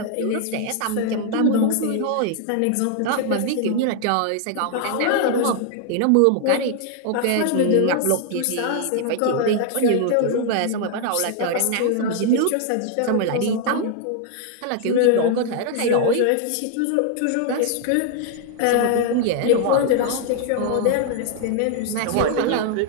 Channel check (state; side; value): different; both; correlation 0.00